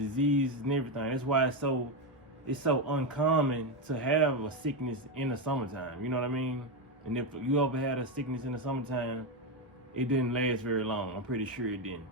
and everything. That's why it's so uncommon to have a sickness in the summertime, you know what I mean? And if you ever had a sickness in the summertime, it didn't last very long. I'm pretty sure it didn't.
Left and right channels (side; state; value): both; normal; correlation 0.09